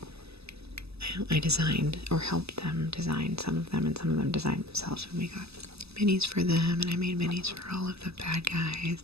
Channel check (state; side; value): late; left; 0.79 ms